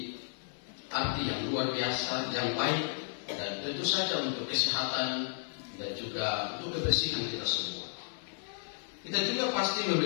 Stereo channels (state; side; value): silent; right; 56 dB below the other